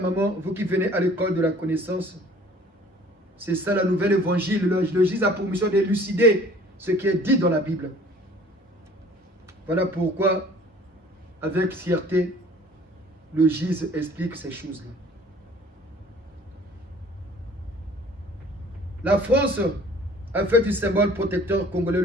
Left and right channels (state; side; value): normal; both; correlation 0.52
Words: maman, vous qui venez à l'école de la connaissance, c'est ça la nouvelle évangile. Le Jésus a pour mission d'élucider ce qui est dit dans la Bible. Voilà pourquoi, avec fierté, le GIZ explique ces choses-là. La France a fait du symbole protecteur congolais